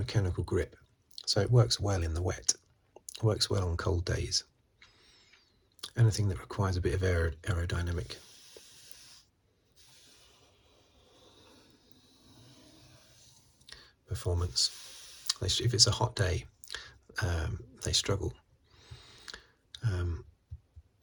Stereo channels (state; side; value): identical; both; correlation 1.00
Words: grip, so it works well in the wet. It works well on cold days. Anything that requires a bit of aerodynamic performance. If it's a hot day, they struggle